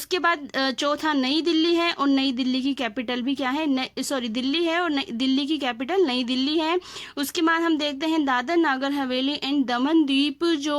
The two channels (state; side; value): identical; both; correlation 1.00